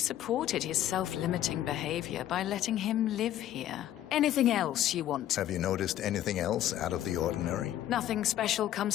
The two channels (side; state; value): right; quieter; 12.3 dB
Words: his self-limiting behavior by letting him live here. Anything else you want? Have you noticed anything else out of the ordinary? Nothing special